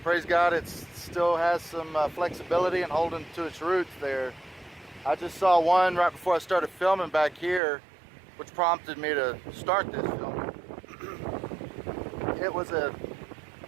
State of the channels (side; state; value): left; drops out; at 7.6 s